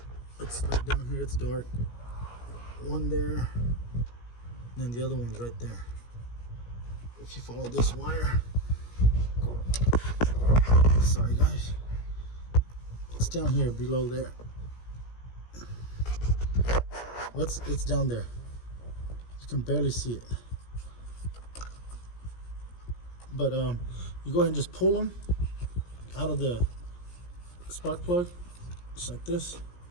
It's like down here, it's dark. One there, and then the other one's right there. If you follow this wire, sorry guys, it's down here below there. It's down there. You can barely see it. But you go ahead and just pull them out of the spark plug, just like this.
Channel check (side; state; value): right; late; 17 ms